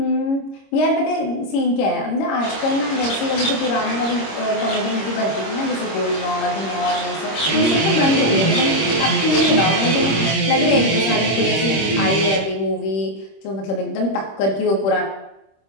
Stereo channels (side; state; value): right; late; 26 ms